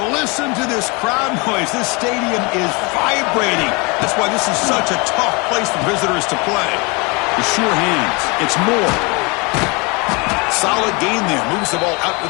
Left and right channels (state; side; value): quieter; right; 28.9 dB